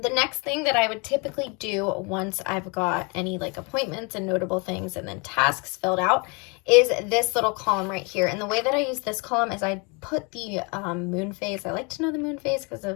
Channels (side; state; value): right; quieter; 31.3 dB